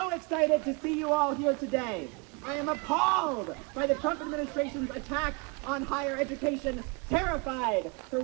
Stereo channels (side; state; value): left; quieter; 30.8 dB